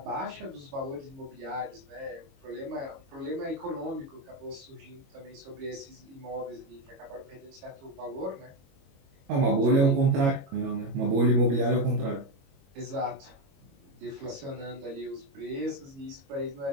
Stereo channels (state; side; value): late; left; 22 ms